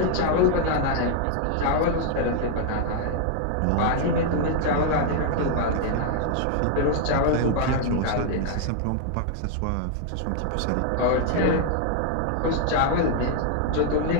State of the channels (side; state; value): both; different; correlation 0.00